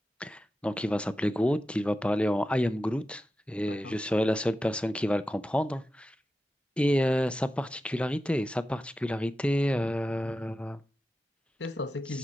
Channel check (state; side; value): normal; both; correlation 0.92